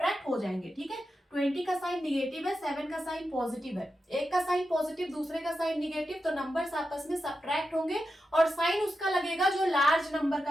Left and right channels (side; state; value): both; normal; correlation 0.89